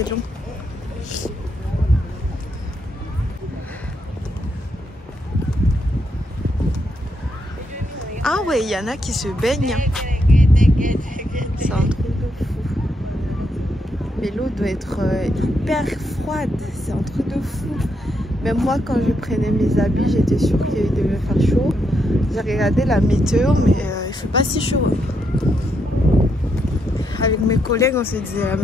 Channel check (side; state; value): both; normal; correlation 0.79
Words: long. Ah ouais, il y en a qui se baignent. C'est un truc de fou. Mais l'eau doit être hyper froide. C'est un truc de fou. Même moi, quand je prenais mes habits, j'étais sûre qu'il devait faire chaud. J'ai regardé la météo, mais il fait pas si chaud. Avec mes collègues, on se disait la